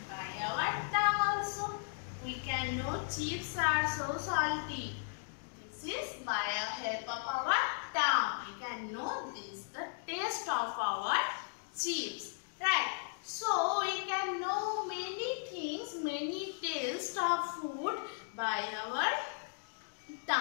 by our tongue also. We can know chips are so salty. This is by the help of our tongue. We can know this, the taste of our chips. Right? So we can know many things, many tastes of food by our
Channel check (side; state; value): right; silent; digital silence